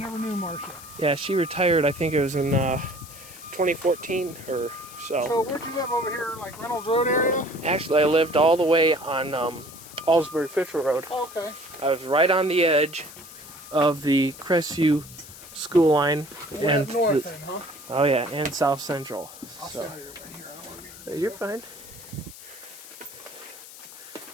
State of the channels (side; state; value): left; noise; hiss, 17 dB below the sound